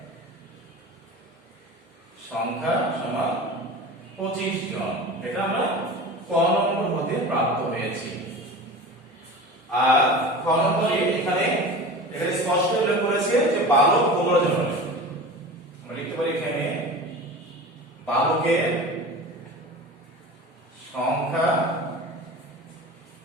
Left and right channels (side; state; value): both; normal; correlation 0.34